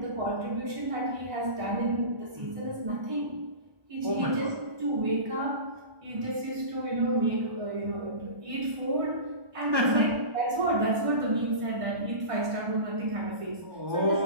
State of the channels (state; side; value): late; left; 1.6 ms